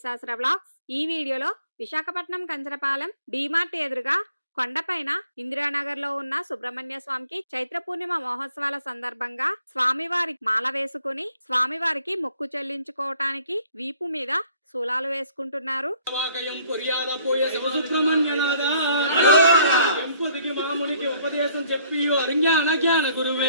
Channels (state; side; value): inverted; both; correlation -0.60